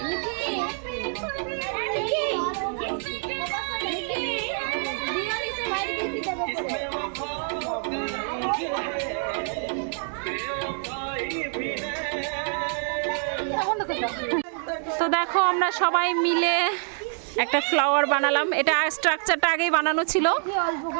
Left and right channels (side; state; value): left; silent; 57 dB below the other